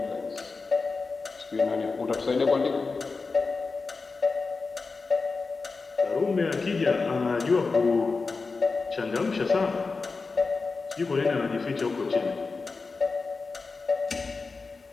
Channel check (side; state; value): right; quieter; 4.2 dB